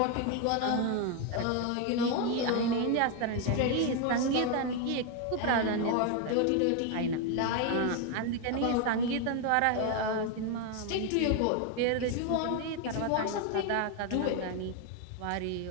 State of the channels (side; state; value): both; different; correlation 0.01